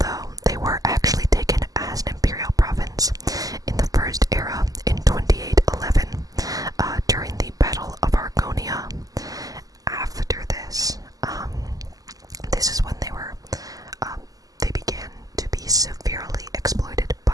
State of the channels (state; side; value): late; left; 0.17 ms